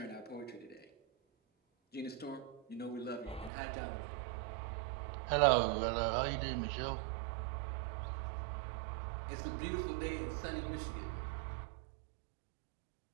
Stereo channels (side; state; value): left; drops out; at 3.5 s